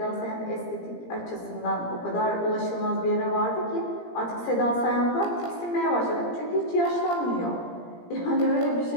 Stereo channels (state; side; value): late; right; 17 ms